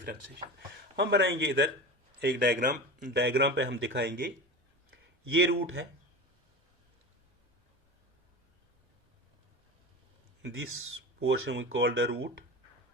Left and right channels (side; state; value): both; normal; correlation 0.29